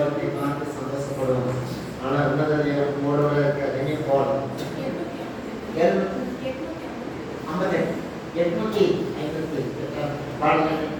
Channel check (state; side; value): identical; both; correlation 1.00